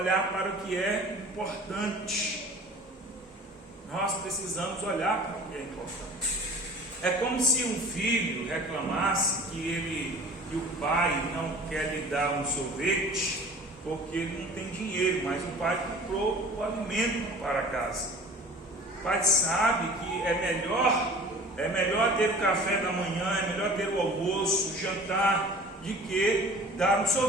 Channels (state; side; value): normal; both; correlation 0.44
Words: para o que é importante, nós precisamos olhar para o que é importante. É como se um filho reclamasse que o pai não quer lhe dar um sorvete porque ele não tem dinheiro, mas o pai comprou o alimento para casa. O pai sabe que é melhor ter o café da manhã, é melhor ter o almoço, o jantar, de que dar um